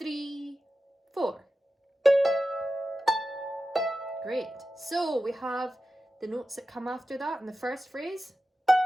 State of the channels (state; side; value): normal; both; correlation 0.92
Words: 4. Great. So we have the notes that come after that in the first phrase.